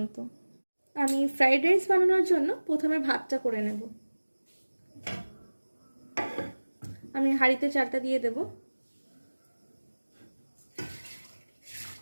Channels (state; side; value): inverted; both; correlation -1.00